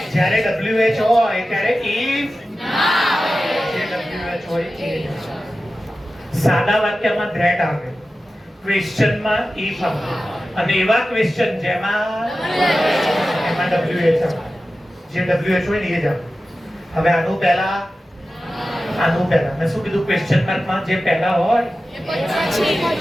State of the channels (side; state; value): both; normal; correlation 0.94